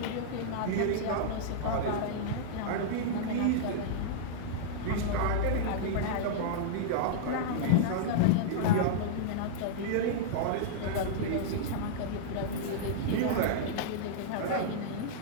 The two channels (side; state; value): both; different; correlation -0.02